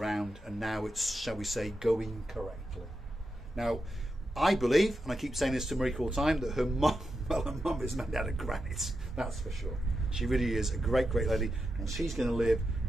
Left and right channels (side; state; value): both; normal; correlation 0.88